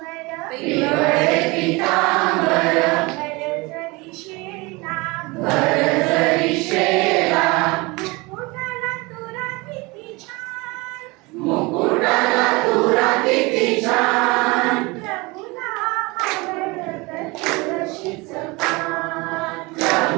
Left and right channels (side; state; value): left; quieter; 25.0 dB